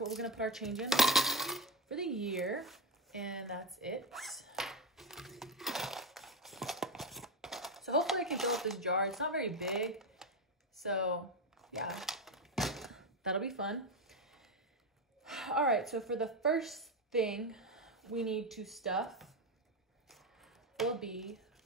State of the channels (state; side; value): normal; both; correlation 0.14